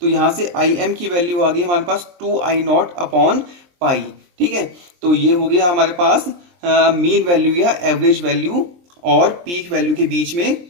तो यहाँ से आई एम की वैल्यू आ गई हमारे पास 2 आई नॉट अपॉन पाई, ठीक है। तो ये हो गया हमारे पास मीन वैल्यू या एवरेज वैल्यू और पीक वैल्यू के बीच में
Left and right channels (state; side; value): late; left; 23 ms